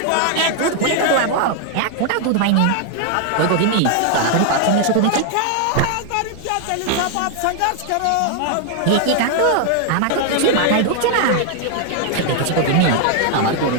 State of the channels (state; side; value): different; both; correlation 0.00